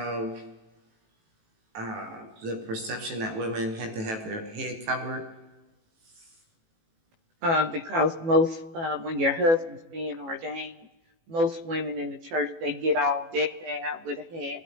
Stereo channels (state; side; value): late; left; 18 ms